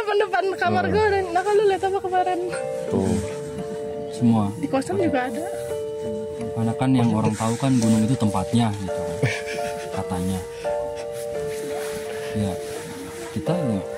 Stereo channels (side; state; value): both; identical; correlation 1.00